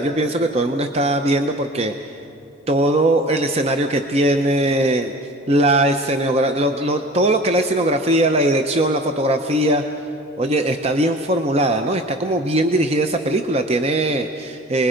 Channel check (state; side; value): normal; both; correlation 0.42